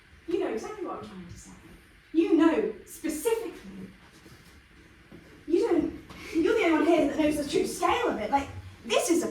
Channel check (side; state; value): both; identical; correlation 1.00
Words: You know exactly what I'm trying to say. You know specifically. You're the only one here that knows the true scale of it. This is a